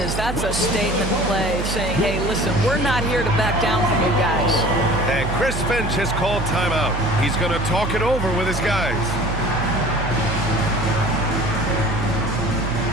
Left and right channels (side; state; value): right; noise; hum, 5 dB below the sound